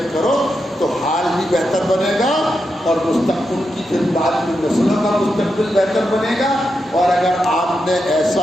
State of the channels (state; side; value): normal; both; correlation 0.86